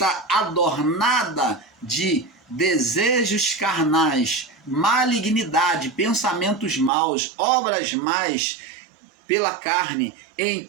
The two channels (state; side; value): drops out; left; at 6.9 s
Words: adornada de desejos carnais, malignidade, pensamentos maus, obras más pela carne.